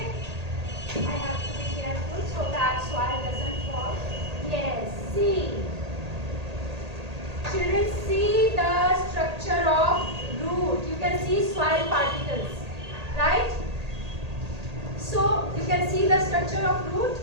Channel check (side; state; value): left; late; 1.8 ms